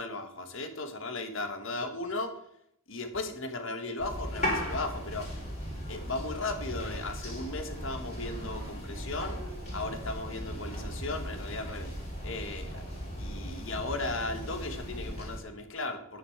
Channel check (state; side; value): normal; both; correlation 0.12